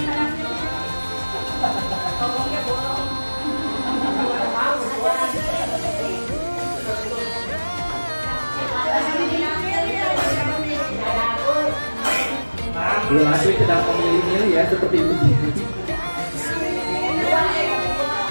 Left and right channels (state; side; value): inverted; both; correlation -1.00